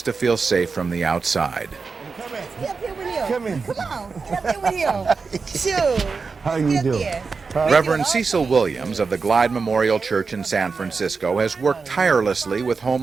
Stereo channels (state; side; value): quieter; left; 4.8 dB